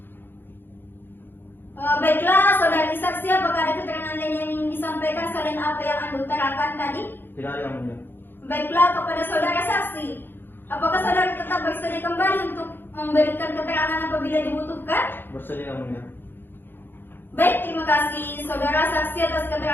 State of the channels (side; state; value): right; late; 0.099 ms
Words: Baiklah, saudara saksi, apakah ada keterangan lain yang ingin disampaikan selain apa yang Anda utarakan tadi? Tidak ada yang mulia. Baiklah, kepada saudara saksi, apakah saudara tetap bersedia kembali untuk memberikan keterangan apabila dibutuhkan? Bersedia yang mulia. Baik, terima kasih saudara saksi atas